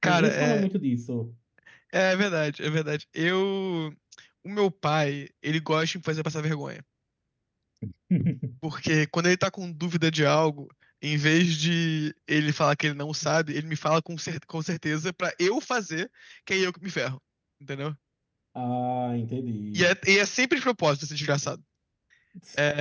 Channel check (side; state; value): both; identical; correlation 1.00